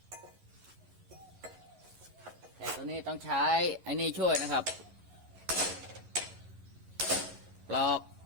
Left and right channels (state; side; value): late; left; 11 ms